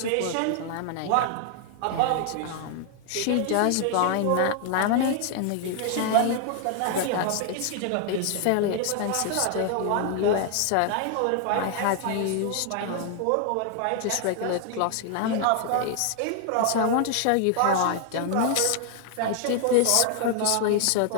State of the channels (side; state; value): both; different; correlation 0.00